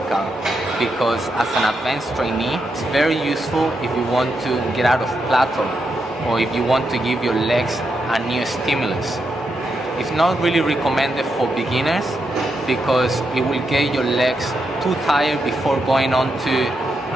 because as an advanced trainee, it's very useful if you want to get out of plateau or if you want to give your legs a new stimulus. It's not really recommended for beginners because it will get your legs too tired before going on to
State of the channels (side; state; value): both; normal; correlation 0.83